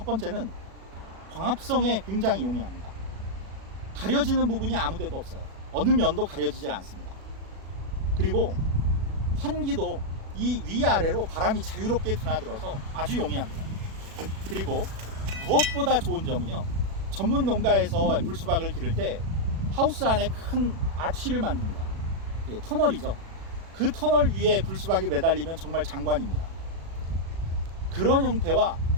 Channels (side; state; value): left; late; 37 ms